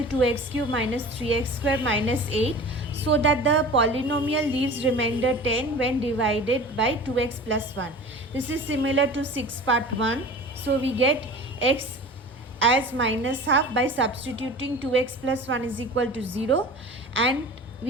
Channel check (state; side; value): normal; both; correlation 0.38